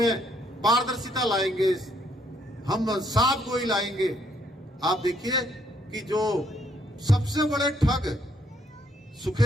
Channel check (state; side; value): normal; both; correlation 0.70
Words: पारदर्शिता लाएंगे, हम साफ गोई लाएंगे। आप देखिए कि जो सबसे बड़े ठग